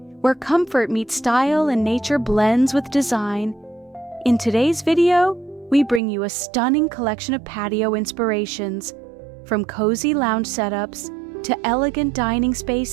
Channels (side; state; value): left; drops out; at 6.0 s